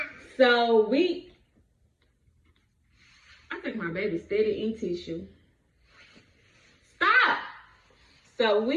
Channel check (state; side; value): identical; both; correlation 1.00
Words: I think my baby's steady in tissue. Stop. So